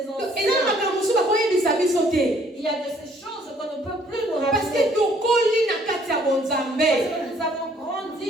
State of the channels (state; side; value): normal; both; correlation 0.62